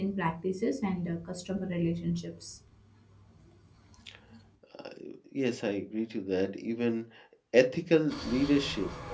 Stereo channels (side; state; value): both; identical; correlation 1.00